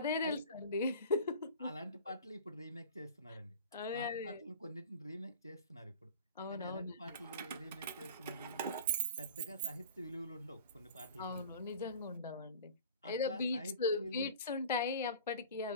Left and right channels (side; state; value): both; inverted; correlation -0.39